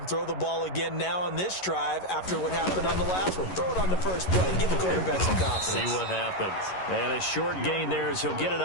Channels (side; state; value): right; late; 11 ms